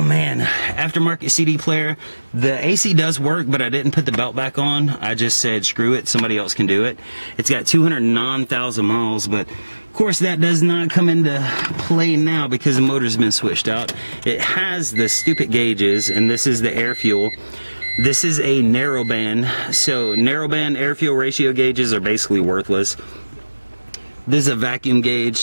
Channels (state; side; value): inverted; both; correlation -1.00